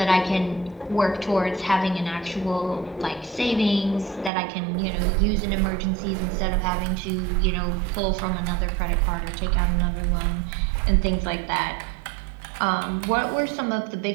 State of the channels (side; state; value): left; drops out; at 4.3 s